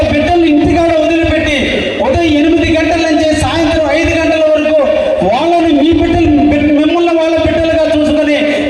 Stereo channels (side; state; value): both; identical; correlation 1.00